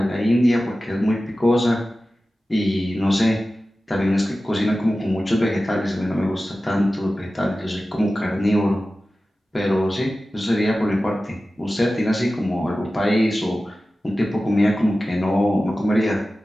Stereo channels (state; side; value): normal; both; correlation 0.95